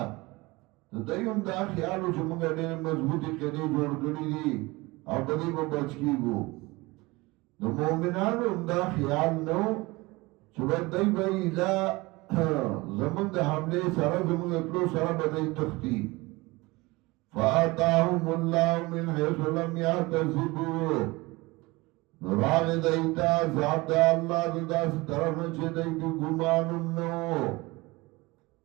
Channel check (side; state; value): left; quieter; 22.6 dB